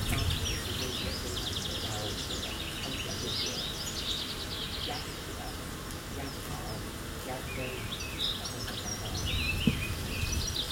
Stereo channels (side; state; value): both; identical; correlation 1.00